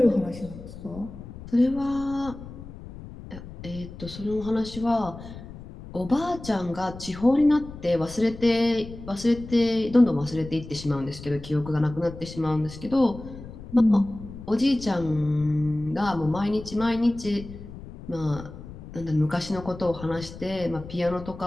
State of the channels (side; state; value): left; noise; rumble, 14 dB below the sound